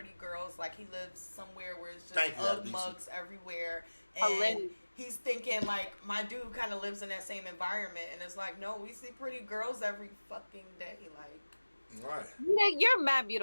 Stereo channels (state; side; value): inverted; both; correlation -1.00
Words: girls. Like he lives somewhere where it's just Ugg mugs everywhere. And he's thinking like my dude kind of lives in that same environment. And it's like, no, we see pretty girls every fucking day. Like. Right. You're mad